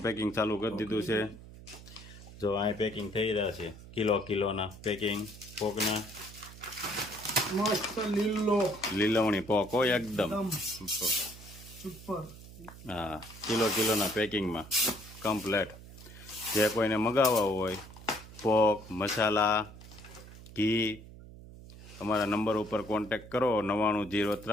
પેકિંગ ચાલુ કરી દીધું છે. જો અહીં પેકિંગ થઈ રહ્યા છે. કિલોના પેકિંગ પોકના. મસ્ત લીલો લીલવણી પોક હોય એકદમ. સુપર. હા, કિલોના પેકિંગમાં કમ્પ્લેટ. જે કોઈને મગાવવા હોય પોક, મસાલા, ઘી, અમારા નંબર ઉપર કોન્ટેક્ટ કરો.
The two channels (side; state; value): right; noise; hum, 17 dB below the sound